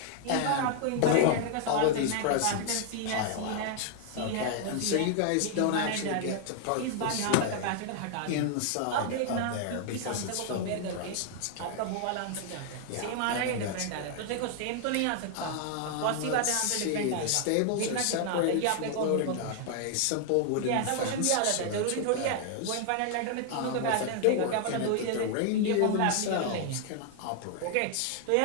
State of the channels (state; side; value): different; both; correlation 0.00